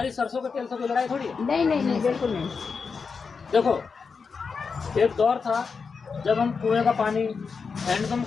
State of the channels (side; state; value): right; quieter; 5.3 dB